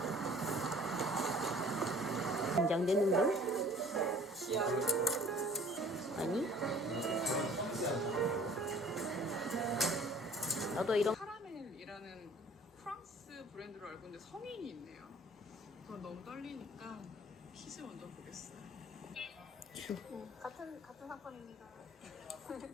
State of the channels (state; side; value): normal; both; correlation 0.50